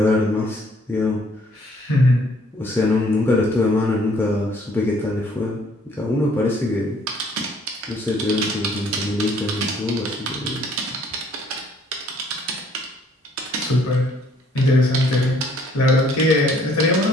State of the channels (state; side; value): normal; both; correlation 0.62